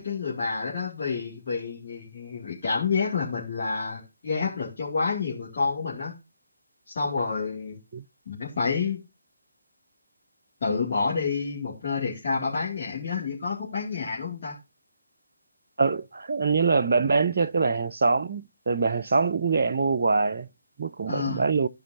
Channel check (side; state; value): both; inverted; correlation -0.75